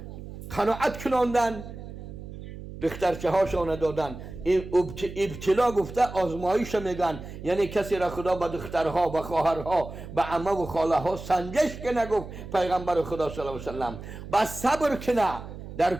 قناعت کناندن، دخترچه هاشانه دادن. این ابتلا گفته آزمایش میگن، یعنی کسی را خدا به دخترها، به خواهرها، به عمه و خاله ها سنجش کنه. گفت پیغمبر خدا صلی الله علیه و سلم بس صبر کنه در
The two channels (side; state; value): right; noise; hum, 12 dB below the sound